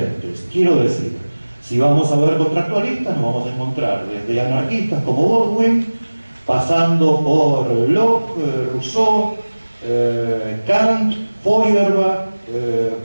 Quiero decir, si vamos a ver contractualistas, nos vamos a encontrar desde anarquistas como Baldwin, pasando por Locke, Rousseau, Kant, Feuerbach,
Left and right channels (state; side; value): inverted; both; correlation -1.00